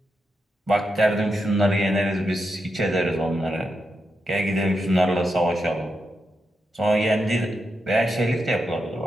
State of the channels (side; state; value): both; normal; correlation 0.86